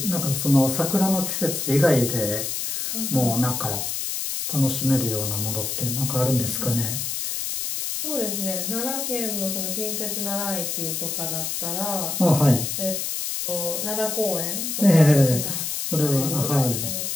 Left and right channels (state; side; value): noise; left; hiss, 3 dB below the sound